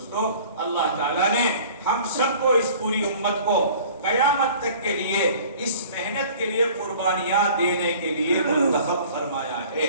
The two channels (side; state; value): both; inverted; correlation -0.48